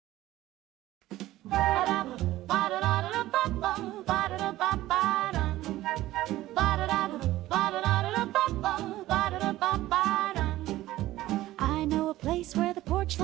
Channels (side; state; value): left; quieter; 15.8 dB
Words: I know a place where the porch